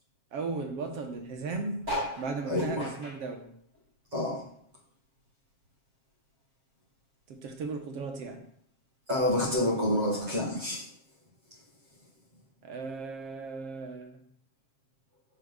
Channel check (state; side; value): late; left; 7.5 ms